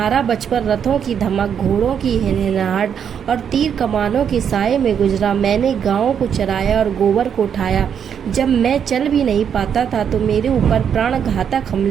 बचपन रथों की धमक, घोड़ों की हिनहिनाहट और तीर कमानों के साए में गुजरा। मैंने गायों को चराया और गोबर को उठाया। जब मैं चल भी नहीं पाता था तो मेरे ऊपर प्राणघातक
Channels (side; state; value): left; quieter; 8.0 dB